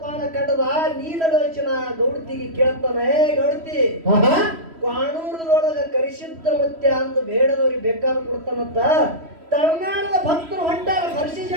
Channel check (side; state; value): left; late; 3.1 ms